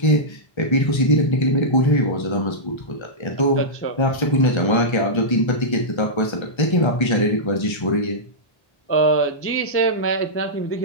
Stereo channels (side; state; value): right; late; 1.3 ms